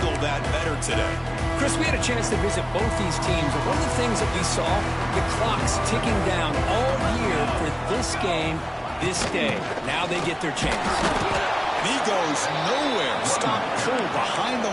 that better today? Chris, we had a chance to visit both these teams, and one of the things that we saw, the clock's ticking down all year for this game, this day. Now they get their chance. And he goes nowhere. Stop cold behind the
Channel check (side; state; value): both; identical; correlation 1.00